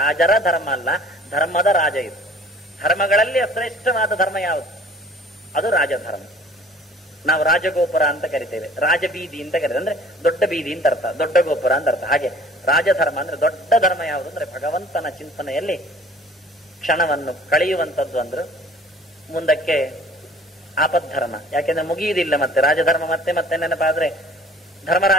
ಧರ್ಮ ಅಲ್ಲ, ಧರ್ಮದ ರಾಜ ಇದು. ಧರ್ಮಗಳಲ್ಲಿ ಶ್ರೇಷ್ಠವಾದ ಧರ್ಮ ಯಾವುದು? ಅದು ರಾಜಧರ್ಮ. ನಾವು ರಾಜಗೋಪುರ ಅಂತ ಕರಿತೇವೆ, ರಾಜಬೀದಿ ಅಂತ ಕರೀತೇವೆ. ಅಂದ್ರೆ ದೊಡ್ಡ ಬೀದಿ ಅಂತ ಅರ್ಥ, ದೊಡ್ಡ ಗೋಪುರ ಅಂತ ಅರ್ಥ. ಹಾಗೆ ರಾಜಧರ್ಮ ಅಂದ್ರೆ ದೊಡ್ಡ ಧರ್ಮ ಯಾವುದು ಅಂದ್ರೆ ಭಗವಂತನ ಚಿಂತನೆಯಲ್ಲಿ ಕ್ಷಣವನ್ನು ಕಳೆಯುವಂಥದ್ದು. ಅಂದ್ರು ಮುಂದಕ್ಕೆ ಆಪದ್ಧರ್ಮ. ಯಾಕೆಂದ್ರೆ ಮುಗಿಯುವುದಿಲ್ಲ ಮತ್ತೆ ರಾಜಧರ್ಮ. ಮತ್ತೆ ಮತ್ತೆ ನೆನಪಾದ್ರೆ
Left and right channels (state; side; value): normal; both; correlation 0.51